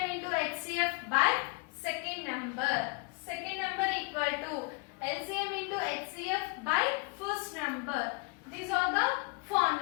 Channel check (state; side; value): quieter; right; 31.8 dB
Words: into HCF by second number. Second number equal to LCM into HCF by first number. These are the